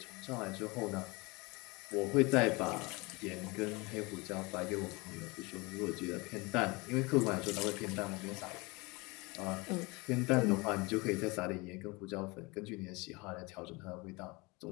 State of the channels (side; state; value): right; quieter; 25.7 dB